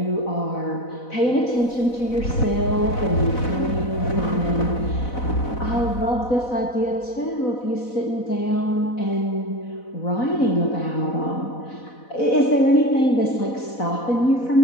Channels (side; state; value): right; late; 4.0 ms